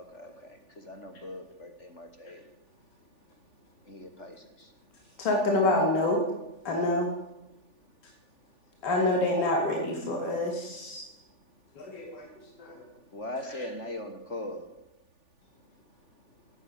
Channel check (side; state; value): right; late; 3.4 ms